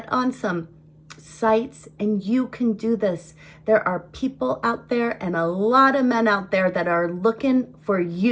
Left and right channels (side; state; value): both; identical; correlation 1.00